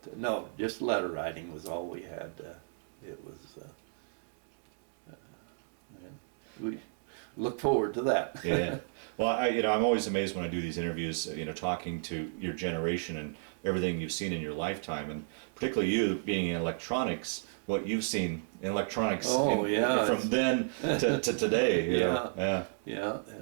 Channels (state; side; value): silent; left; digital silence